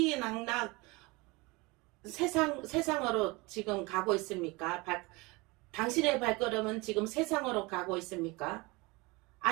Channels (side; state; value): left; quieter; 24.7 dB